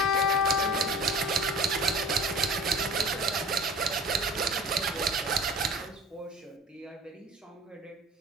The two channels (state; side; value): normal; both; correlation 0.40